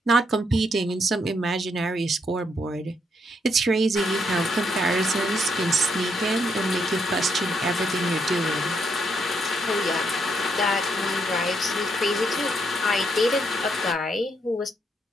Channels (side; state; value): both; normal; correlation 0.75